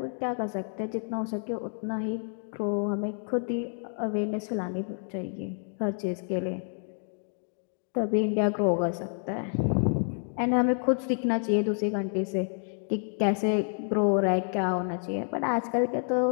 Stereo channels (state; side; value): silent; right; 59 dB below the other